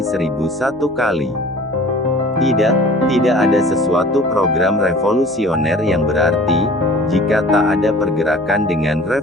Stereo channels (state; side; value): noise; right; hum, 23 dB below the sound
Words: kali. Tidak ada sesuatu program revolusioner yang berarti, jika tak ada pergerakan dengan